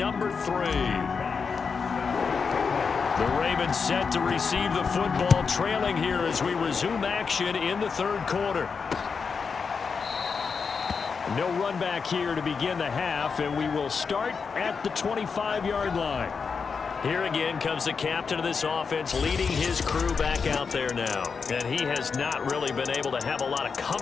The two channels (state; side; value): quieter; right; 5.5 dB